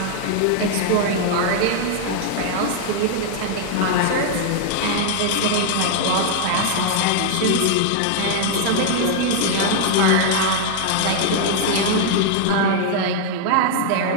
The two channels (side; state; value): both; different; correlation 0.00